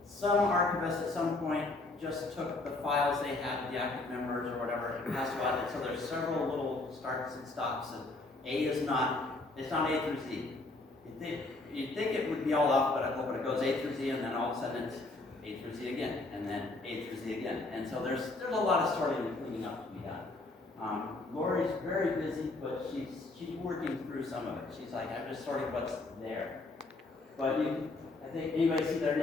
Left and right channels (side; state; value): right; quieter; 3.1 dB